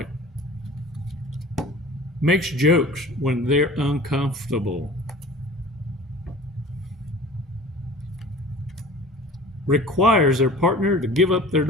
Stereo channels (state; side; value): normal; both; correlation 0.43